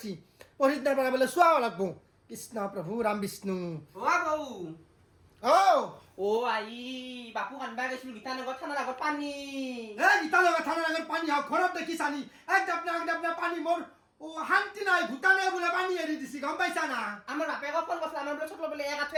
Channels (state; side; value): identical; both; correlation 1.00